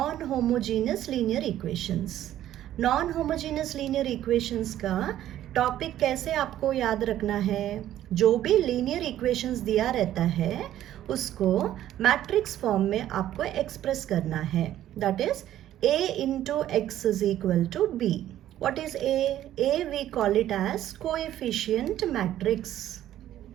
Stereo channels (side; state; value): left; quieter; 12.4 dB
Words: homogeneous linear equations. Non homogeneous linear equations का टॉपिक कैसे आपको याद रखना है? जो भी लीनियर इक्वेशंस दिया रहता है उसको मैट्रिक्स फॉर्म में आपको एक्सप्रेस करना है. That is A into X is equal to B. What is A? A we call it as coefficient matrix.